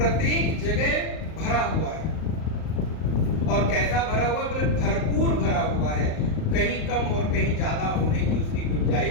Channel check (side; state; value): right; late; 38 ms